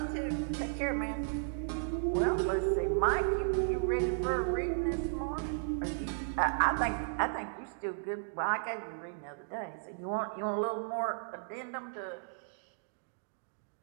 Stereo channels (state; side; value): silent; left; digital silence